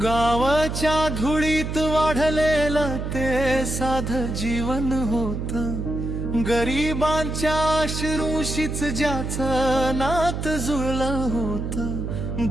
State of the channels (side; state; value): right; noise; hum, 4 dB below the sound